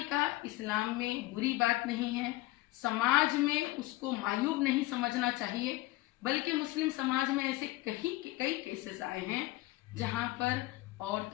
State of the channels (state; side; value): quieter; right; 19.1 dB